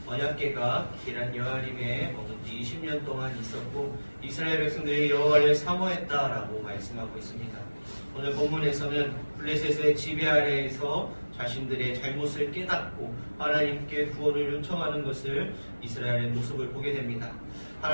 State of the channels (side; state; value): both; inverted; correlation -1.00